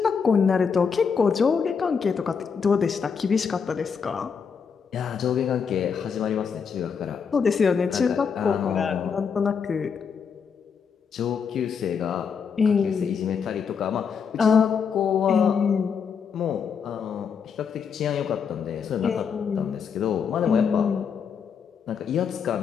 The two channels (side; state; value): right; quieter; 6.4 dB